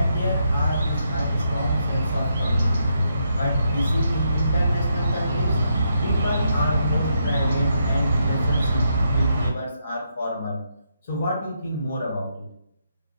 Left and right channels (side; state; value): both; inverted; correlation -0.78